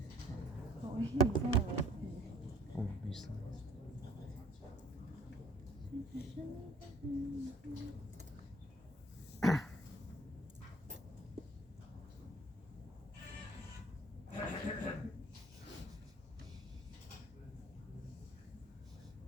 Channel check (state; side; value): normal; both; correlation 0.55